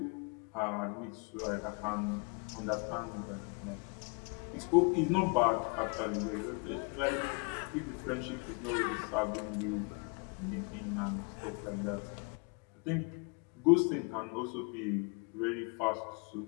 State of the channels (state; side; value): quieter; right; 33.9 dB